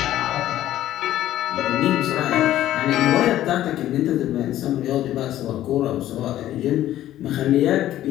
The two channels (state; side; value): quieter; right; 13.2 dB